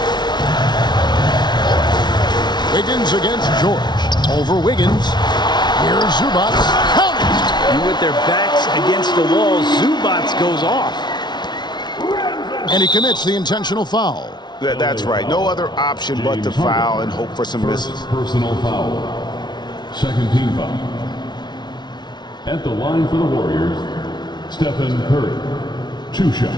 Wiggins against George. Over Wiggins. Here's Zubac. Count it! And with their backs against the wall, Zubac goes off. And he commits the intentional foul. That's right. No other option but to foul and hope for some misses. Personal foul. Second team foul. At the line for the Warriors, Stephen Curry. 2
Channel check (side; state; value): right; late; 0.20 ms